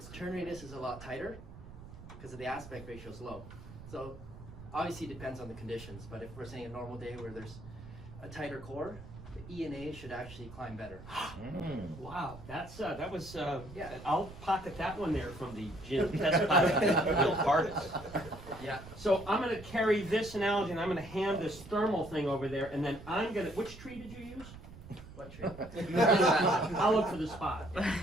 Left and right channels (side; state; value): right; noise; rumble, 15 dB below the sound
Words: turn radius is a lot tighter because of the aspect ratio is low. So obviously it depends on the conditions, but if we're saying a normal day where there's a tighter core, the ENA should actually climb better. Wow, that was Yeah. I'll pocket that one there from the gym test pilot, Bill Cardis. Yeah. So I'm going to carry this analogy and I'm going to hand this thermal thing over there, and then I'm going to. Which tree did you use? What tree? I'll look for the spot.